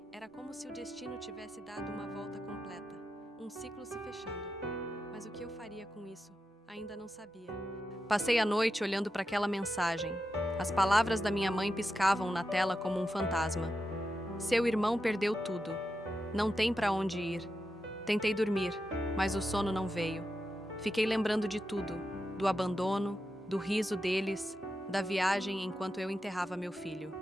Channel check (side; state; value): both; normal; correlation 0.88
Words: Era como se o destino tivesse dado uma volta completa, um ciclo se fechando. Mas o que eu faria com isso? Ainda não sabia. Passei a noite olhando para aquela mensagem. As palavras da minha mãe piscavam na tela como um fantasma. "Seu irmão perdeu tudo. Não tem para onde ir." Tentei dormir, mas o sono não veio. Fiquei lembrando de tudo, do abandono, do riso deles, da viagem enquanto eu enterrava meu filho.